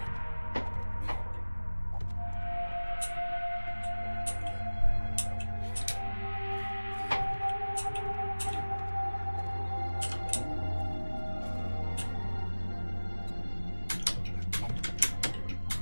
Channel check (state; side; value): inverted; both; correlation -1.00